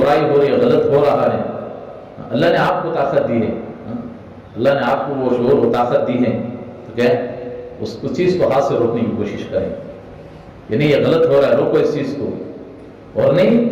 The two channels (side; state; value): both; identical; correlation 1.00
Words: برائی ہو رہی ہے، غلط ہو رہا ہے، اللہ نے آپ کو طاقت دی ہے، اللہ نے آپ کو وہ شعور و طاقت دی ہے، تو کیا اس چیز کو ہاتھ سے روکنے کی کوشش کریں، یعنی یہ غلط ہو رہا ہے، روکو اس چیز کو، اور نہیں